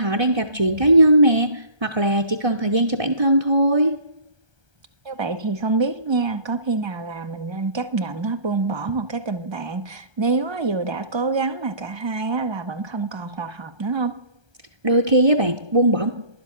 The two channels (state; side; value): late; left; 1.3 ms